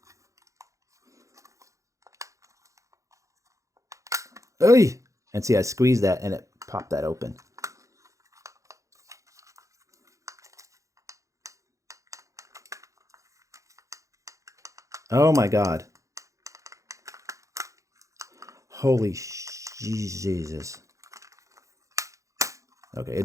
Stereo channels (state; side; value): late; left; 0.15 ms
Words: Oy! And see, I squeezed that and it popped that open. Oh my God. Holy Jesus. Okay,